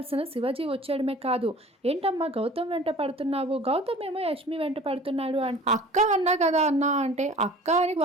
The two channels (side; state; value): both; normal; correlation 0.45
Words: శివాజీ వచ్చేయడమే కాదు, "ఏంటమ్మా గౌతమ్ వెంట పడుతున్నావు? గౌతమ్ ఏమో యష్మి వెంట పడుతున్నాడు" అక్క అన్నా కదా అన్నా అంటే, "అక్క అని